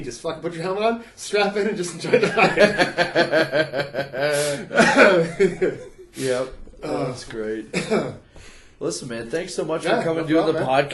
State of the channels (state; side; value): identical; both; correlation 1.00